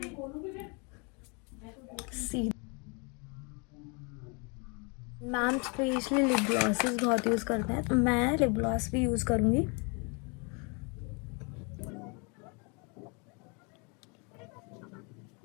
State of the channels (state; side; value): quieter; right; 33.4 dB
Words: See ma'am specially lip glosses बहुत यूज़ करते हैं, तो मैं लिप ग्लॉस भी यूज़ करूँगी।